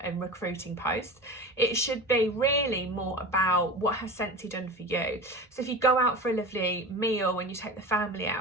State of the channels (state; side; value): normal; both; correlation 0.31